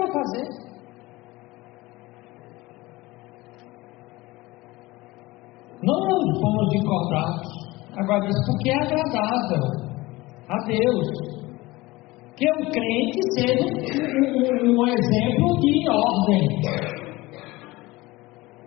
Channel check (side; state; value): right; quieter; 20.5 dB